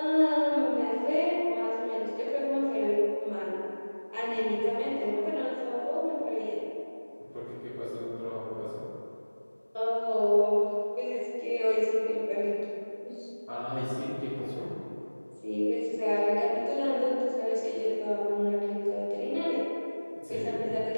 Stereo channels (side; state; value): both; inverted; correlation -1.00